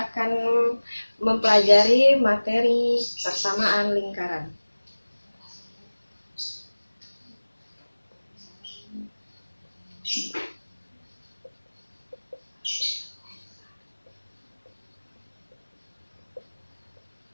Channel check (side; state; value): both; inverted; correlation -1.00